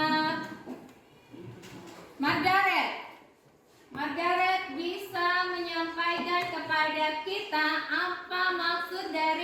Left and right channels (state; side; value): identical; both; correlation 1.00